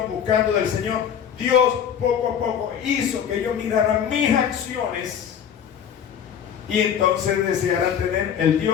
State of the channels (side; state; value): right; quieter; 8.5 dB